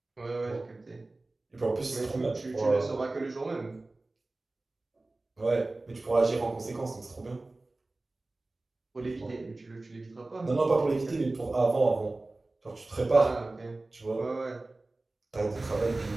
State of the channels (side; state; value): left; quieter; 3.0 dB